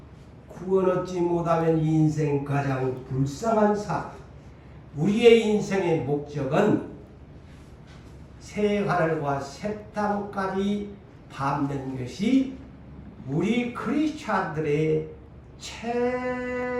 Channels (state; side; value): identical; both; correlation 1.00